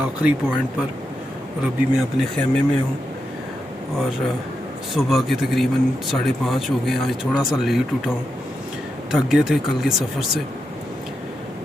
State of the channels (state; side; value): normal; both; correlation 0.86